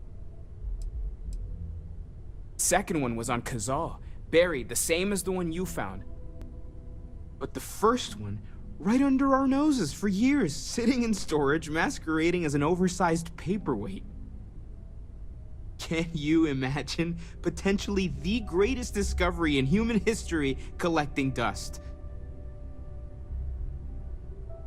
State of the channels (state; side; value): identical; both; correlation 1.00